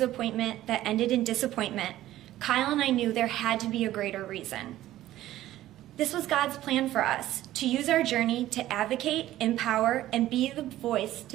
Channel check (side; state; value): left; quieter; 14.3 dB